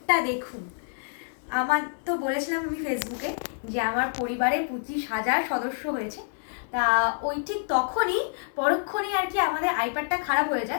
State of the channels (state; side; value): silent; right; digital silence